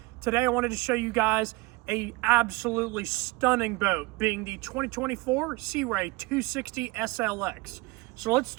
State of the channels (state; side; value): quieter; left; 24.2 dB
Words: Today I wanted to show you guys a absolutely stunning boat, being the 2024 Sea Ray 260 SLX. So let's